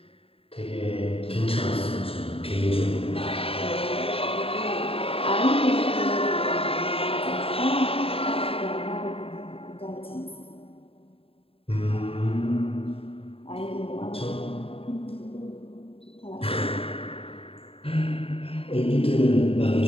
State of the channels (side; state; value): right; late; 0.27 ms